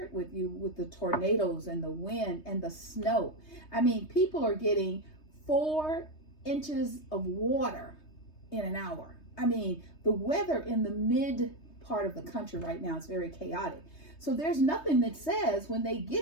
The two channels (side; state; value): right; late; 3.2 ms